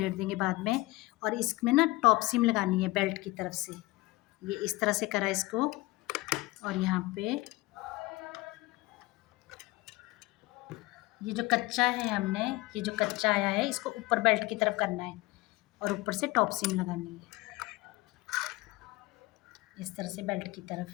देंगे बाद में। और इसमें ना टॉप सीम लगानी है बेल्ट की तरफ से, ये इस तरह से करा इसको, और यहाँ पे ये जो कच्चा है हमने, ये जो कच्चा आया है इसको ऊपर बेल्ट की तरफ करना है, और ऊपर से टॉप सीम लगानी है इस तरह से बेल्ट की तरफ।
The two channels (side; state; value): right; quieter; 20.7 dB